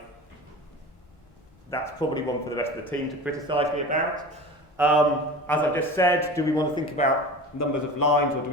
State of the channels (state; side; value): normal; both; correlation 0.34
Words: That's probably one for the rest of the team to criticise me about. As I just said, do we want to think about numbers of lines, or do